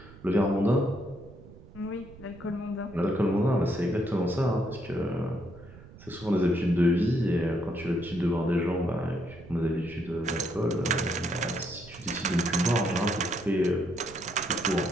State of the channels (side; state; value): right; noise; rumble, 19 dB below the sound